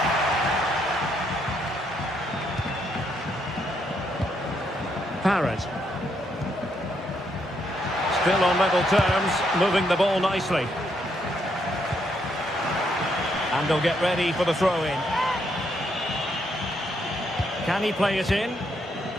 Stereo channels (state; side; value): normal; both; correlation 0.75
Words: Parrott. Still on level terms, moving the ball nicely. And they'll get ready for the throw-in. Can he play it in?